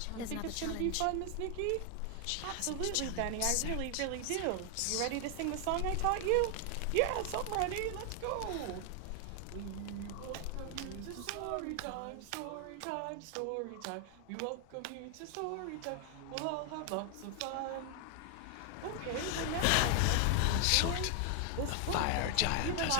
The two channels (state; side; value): different; both; correlation 0.00